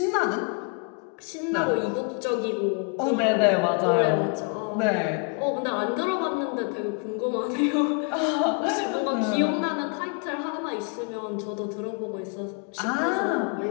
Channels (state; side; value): quieter; right; 35.2 dB